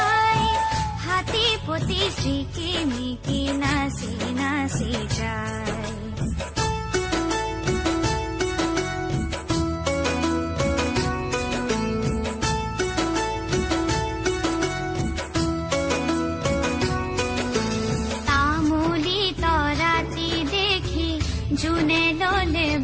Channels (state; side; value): identical; both; correlation 1.00